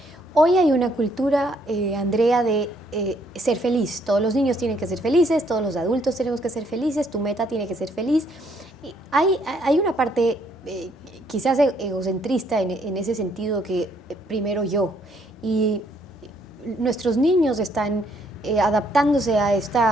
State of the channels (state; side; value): normal; both; correlation 0.68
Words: Hoy hay una cultura, Andrea, de ser feliz. Todos los niños tienen que ser felices, todos los adultos tenemos que ser felices, tu meta tiene que ser feliz. Y hay una parte quizás egocentrista en ese sentido que primero yo. Y nuestros niños están adaptándose a